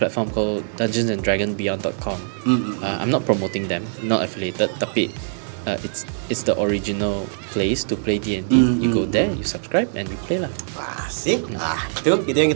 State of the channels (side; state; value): left; silent; 61 dB below the other